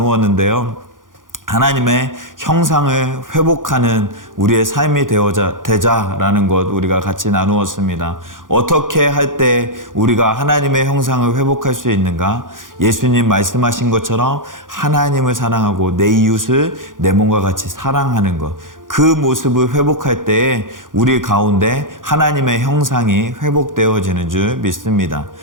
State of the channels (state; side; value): late; left; 0.89 ms